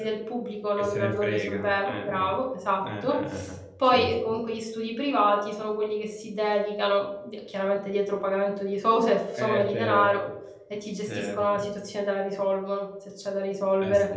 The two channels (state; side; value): identical; both; correlation 1.00